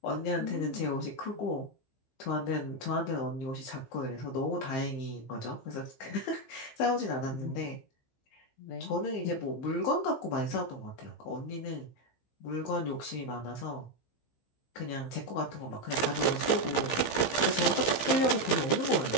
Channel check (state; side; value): late; right; 15 ms